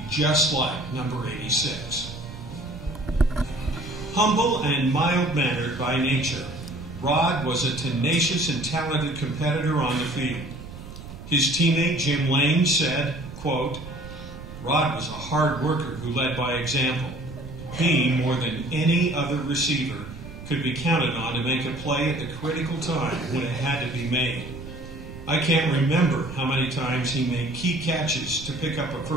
just like number 86. Humble and mild-mannered by nature, Rod was a tenacious and talented competitor on the field. His teammate Jim Lane said, quote, "Rod was a hard worker who led by example. He, more than any other receiver, could be counted on to make a play at the critical time when it had to be made. I can't remember how many times he made key catches to pick up a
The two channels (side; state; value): right; noise; rumble, 13 dB below the sound